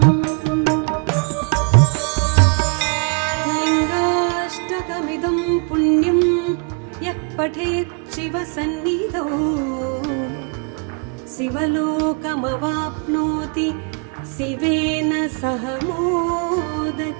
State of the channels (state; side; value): quieter; left; 38.9 dB